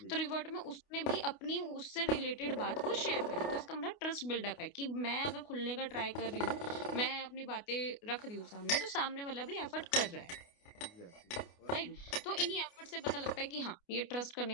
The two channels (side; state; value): right; late; 29 ms